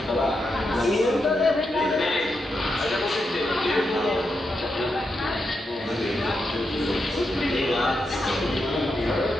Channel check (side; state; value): both; normal; correlation 0.85